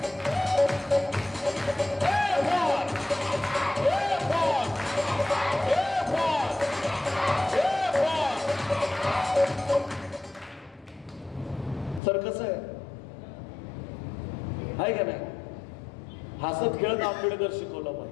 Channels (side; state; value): right; drops out; at 12.0 s